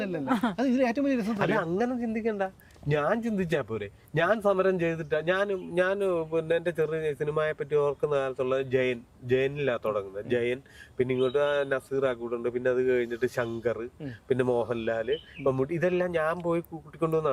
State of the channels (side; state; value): both; identical; correlation 1.00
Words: അങ്ങനെ ചിന്തിക്കണ്ട. ഞാൻ ചിന്തിച്ചാ പോരെ. ഞാൻ സമരം ചെയ്തിട്ടാ ഞാൻ പിന്നെ എന്റെ ചെറിയ സിനിമയെ പറ്റി ഓർക്കുന്ന കാലത്തുള്ള ജയനിലാ തുടങ്ങുന്നത്. ജയൻ, പിന്നെ ഇങ്ങോട്ട് നസീർ ആക്കൂട്ടുണ്ട്, പിന്നെ അത് കഴിഞ്ഞിട്ട് ശങ്കർ, പിന്നെ മോഹൻലാല്, മമ്മൂട്ടി, ഇതെല്ലാം ഞാൻ പോയി